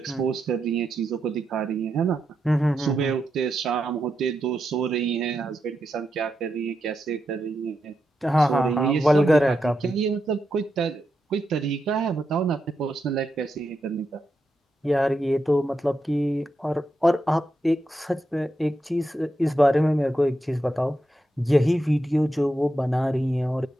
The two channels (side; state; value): both; normal; correlation 0.86